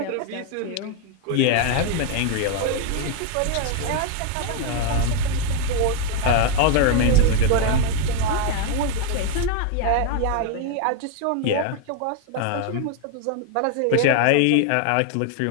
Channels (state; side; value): different; both; correlation 0.01